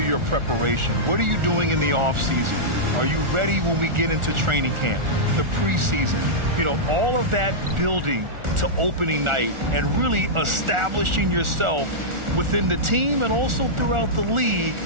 your preparation. What are you doing in the offseason? Are you ready when we get into training camp, the preseason? You know, all of that building to opening night and really establishing yourself within the team and also throughout the league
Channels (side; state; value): left; late; 1.4 ms